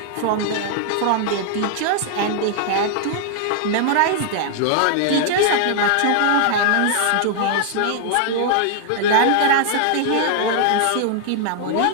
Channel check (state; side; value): different; both; correlation 0.00